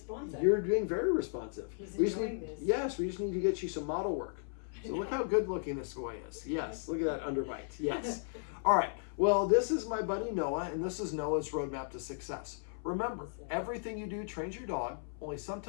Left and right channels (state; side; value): silent; right; 54 dB below the other